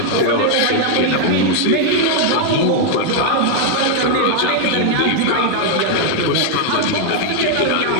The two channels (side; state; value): both; different; correlation 0.00